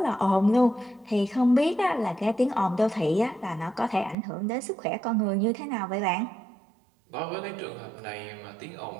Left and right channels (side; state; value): left; drops out; at 4.2 s